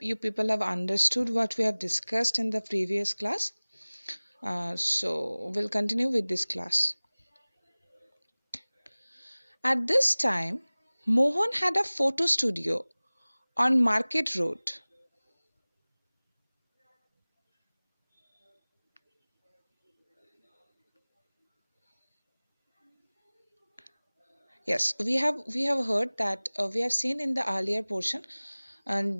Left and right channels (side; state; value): both; inverted; correlation -1.00